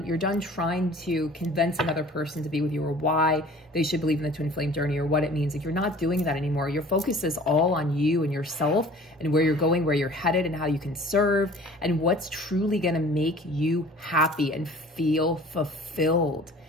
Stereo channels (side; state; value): both; normal; correlation 0.47